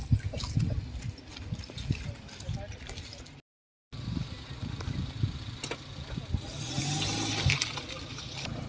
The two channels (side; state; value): both; identical; correlation 1.00